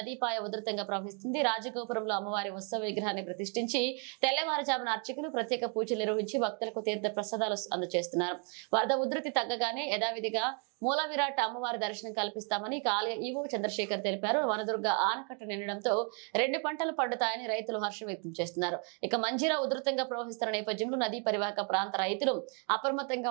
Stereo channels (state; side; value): quieter; left; 38.8 dB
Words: ఉధృతంగా ప్రవహిస్తుంది. రాజగోపురంలో అమ్మవారి ఉత్సవ విగ్రహాన్ని ప్రతిష్ఠించి తెల్లవారుజామున అర్చకులు ప్రత్యేక పూజలు నిర్వహించి భక్తులకు తీర్థ ప్రసాదాలు అందజేస్తున్నారు. వరద ఉధృతి తగ్గగానే యథావిధిగా మూల విరాట్ అమ్మవారి దర్శనం కల్పిస్తామని ఆలయ ఈవో చంద్రశేఖర్ తెలిపారు. వనదుర్గ ఆనకట్ట నిండడంతో 2 పంటలు పండుతాయని రైతులు హర్షం వ్యక్తం చేస్తున్నారు. ఇక మంజీరా ఉధృతంగా ప్రవహిస్తున్న నేపథ్యంలో నదీ పరివాహక ప్రాంత రైతులు అప్రమత్తంగా